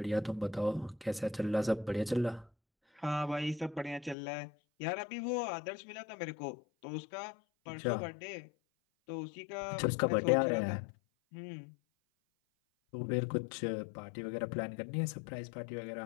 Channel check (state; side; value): drops out; right; at 4.2 s